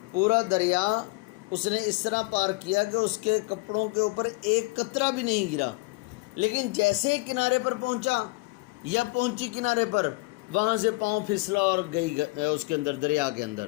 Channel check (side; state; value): right; quieter; 24.1 dB